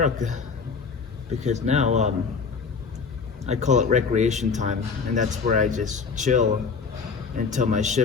because now I call it recreation time, and that's where I just chill until my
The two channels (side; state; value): right; quieter; 5.3 dB